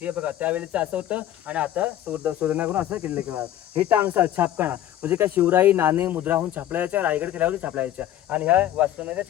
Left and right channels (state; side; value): quieter; right; 12.2 dB